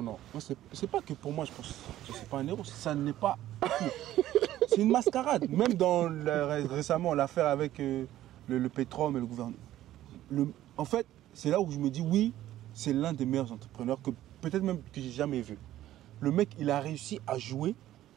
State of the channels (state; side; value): quieter; left; 13.6 dB